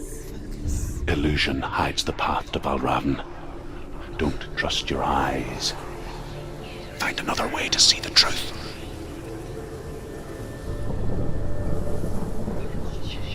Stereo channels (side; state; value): both; identical; correlation 1.00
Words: Illusion hides the path to Valravn. Don't trust your eyes. Find another way to see the truth.